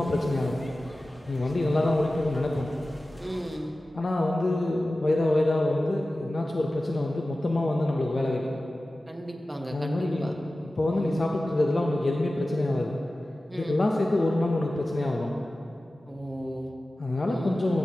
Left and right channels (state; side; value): normal; both; correlation 0.96